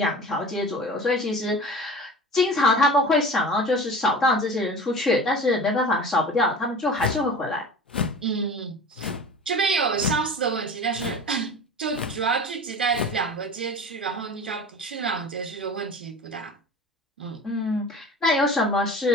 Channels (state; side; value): normal; both; correlation 0.36